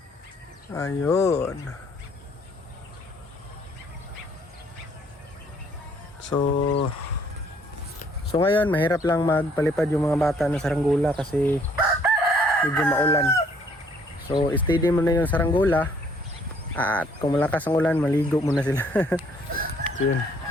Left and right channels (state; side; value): normal; both; correlation 0.63